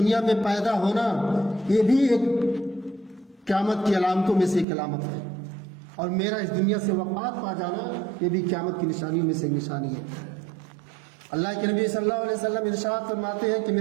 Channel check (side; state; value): left; drops out; at 4.7 s